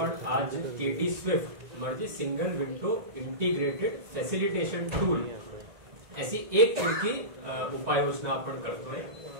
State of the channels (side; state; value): left; late; 1.9 ms